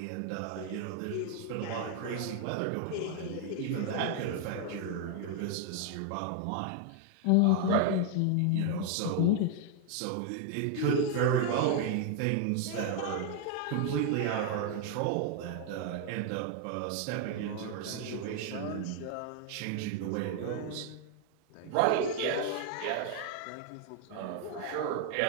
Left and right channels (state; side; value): different; both; correlation 0.00